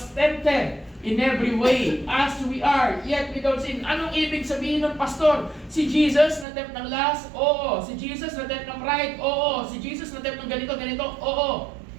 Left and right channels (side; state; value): left; drops out; at 6.5 s